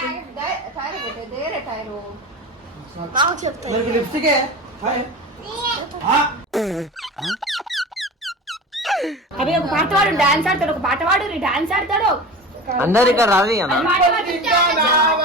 లిప్స్టిక్ అవి ఒక పాట వాడు డాన్స్ ఆడతాడు, ఒక పాట వాడు డాన్స్ ఆడతాడు. అందరు ఇక్కడ రాదు అన్న. ఇంకా నా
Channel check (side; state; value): both; normal; correlation 0.32